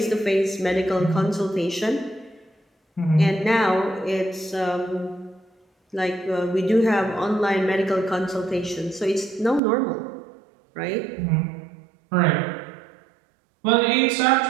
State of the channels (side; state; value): left; drops out; at 9.6 s